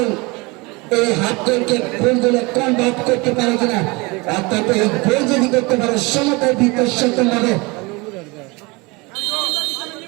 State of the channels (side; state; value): left; quieter; 25.7 dB